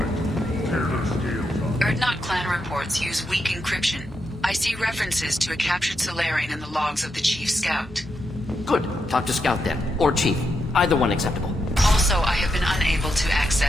Tear their scales off. Erdnot clan reports use weak encryption. I see references to a captured Salarian in the logs of the Chief Scout. Good. Talk to Scout then. Or Chief. Either one acceptable. Also, I have been unable to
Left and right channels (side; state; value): both; normal; correlation 0.83